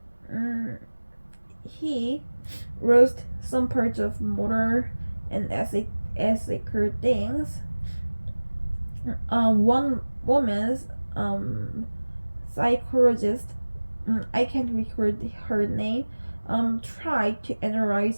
he roast some parts of motor and ethical things. One woman's psychologist, I can't record her name, tried to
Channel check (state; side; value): inverted; both; correlation -1.00